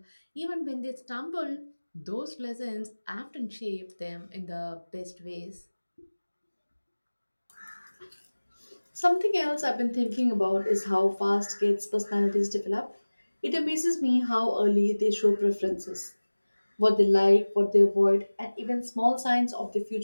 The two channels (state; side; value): inverted; both; correlation -1.00